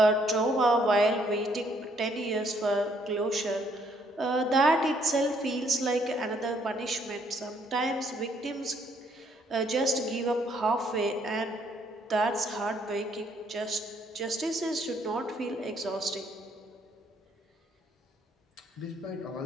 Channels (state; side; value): normal; both; correlation 0.68